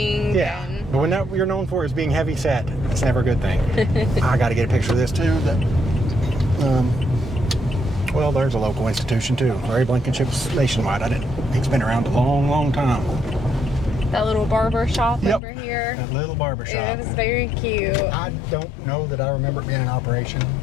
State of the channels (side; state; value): right; drops out; at 15.4 s